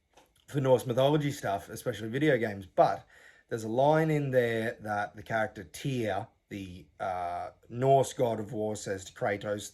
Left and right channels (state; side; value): identical; both; correlation 1.00